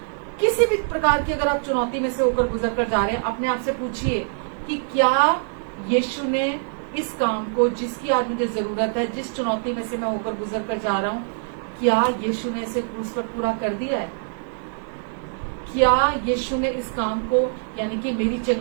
किसी भी प्रकार की अगर आप चुनौती में से होकर गुजर कर जा रहे हैं, अपने आप से पूछिए कि क्या यीशु ने इस काम को, जिसकी आज मुझे जरूरत है, जिस चुनौती में से मैं होकर गुजर कर जा रहा हूं, क्या यीशु ने इसे क्रूस पर पूरा कर दिया है? क्या यीशु ने इस काम को, यानी कि मेरी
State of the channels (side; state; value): left; silent; digital silence